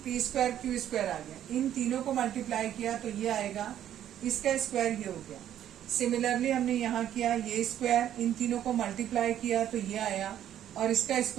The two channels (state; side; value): quieter; left; 11.0 dB